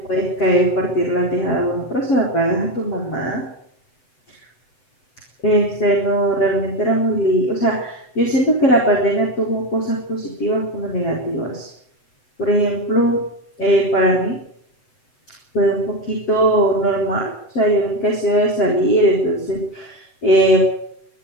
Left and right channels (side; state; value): right; late; 7.9 ms